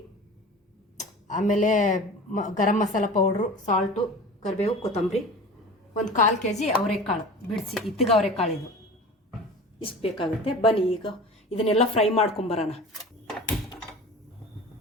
ಆಮೇಲೆ ಗರಂ ಮಸಾಲ ಪೌಡ್ರು, ಸಾಲ್ಟು, ಕರಿಬೇವು, ಕೊತ್ತಂಬರಿ, 1/4 kg ಅವರೆಕಾಳು ಬಿಡಿಸಿ, ಇತ್ತಿಗೆ ಅವರೆಕಾಳು ಇದು ಇಷ್ಟು ಬೇಕಾಗುತ್ತೆ. ಬನ್ನಿ ಈಗ ಇದನ್ನೆಲ್ಲ ಫ್ರೈ ಮಾಡ್ಕೊಂಬರೋಣ.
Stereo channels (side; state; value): both; normal; correlation 0.37